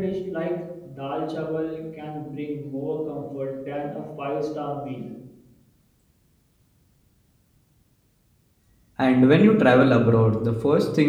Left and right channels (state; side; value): identical; both; correlation 1.00